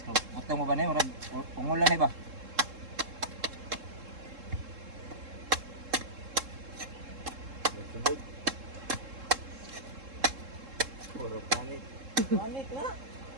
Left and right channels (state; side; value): late; left; 3.7 ms